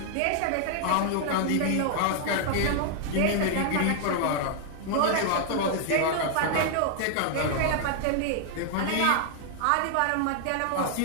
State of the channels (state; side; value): different; both; correlation 0.00